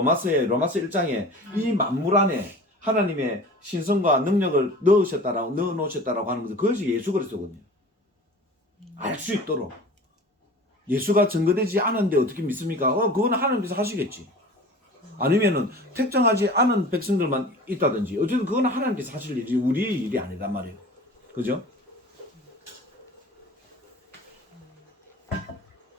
1장에 이 만물 안에 하나님의 신성과 능력을 넣어 놓으셨다라고 하는 것은 그것이 예수 그리스도거든요. 알 수 있도록. 예수가 증거되지 않은데 어떻게 믿습니까? 그건 하나님께서 하시겠지. 아니면은 특정하지 않은 백성들만 있다든지 어쨌든 그건 하나님께서 하실 일이 우리의 일이 아니란 말이에요. 그죠?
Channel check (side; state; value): both; normal; correlation 0.40